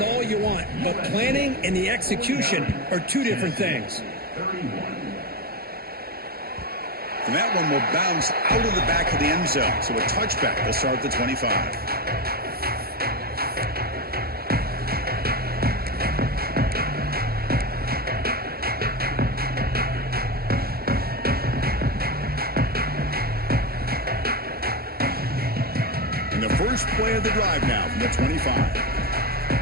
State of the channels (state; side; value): late; left; 0.44 ms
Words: all you want, but planning and the execution are two different things. And that one will bounce out of the back of the end zone. So a touchback will start at the 25. And the first play of the drive now from the 25.